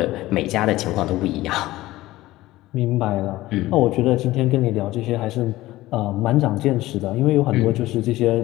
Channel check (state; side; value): quieter; right; 17.2 dB